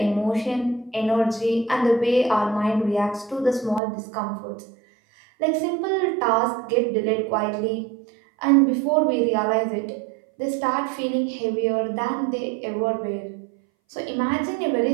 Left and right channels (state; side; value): drops out; left; at 3.8 s